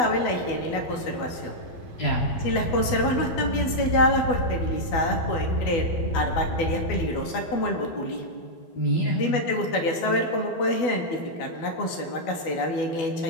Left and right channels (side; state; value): right; late; 12 ms